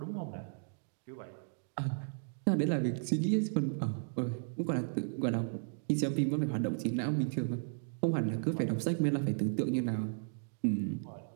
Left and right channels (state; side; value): silent; left; digital silence